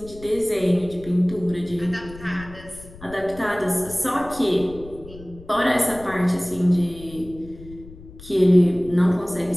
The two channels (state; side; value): noise; left; rumble, 18 dB below the sound